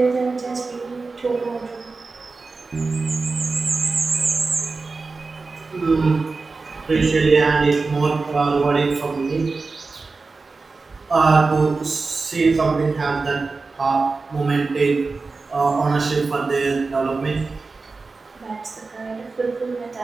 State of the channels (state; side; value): quieter; left; 4.0 dB